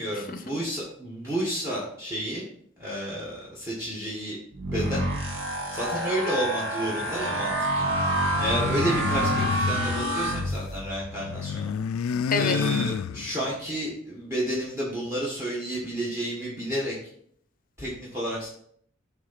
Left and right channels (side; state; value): both; normal; correlation 0.35